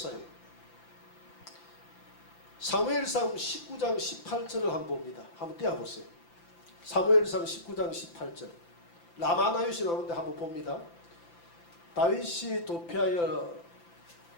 사무엘상 19장 18절을 한번 봅니다. 한번 떼어보세요. 사무엘상 19장 18절. 라마나요시 나오는데 한번 봅니다. 다윗이 도피하여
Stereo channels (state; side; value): late; right; 5.9 ms